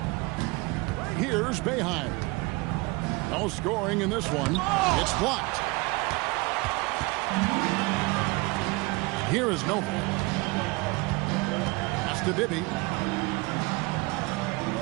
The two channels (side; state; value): left; quieter; 24.9 dB